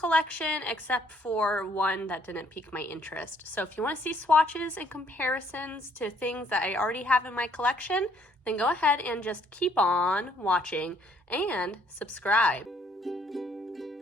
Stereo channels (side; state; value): both; normal; correlation 0.65